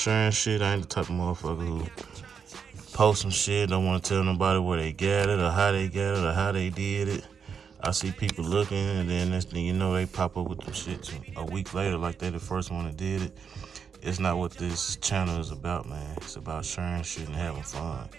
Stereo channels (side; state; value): left; quieter; 6.6 dB